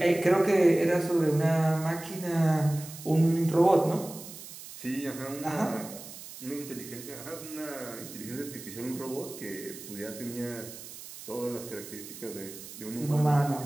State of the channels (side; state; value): right; noise; hiss, 14 dB below the sound